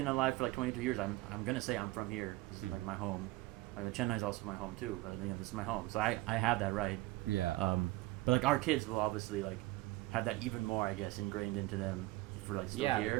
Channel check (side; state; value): left; quieter; 19.6 dB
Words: alive for like 22 years, I'm gonna say I'm from here. This is like my home. I mean, Chennai is also my home too, but this is my home, so I have that right. But like our kids will obviously like have that even more, I guess, ingrained into them if we're like still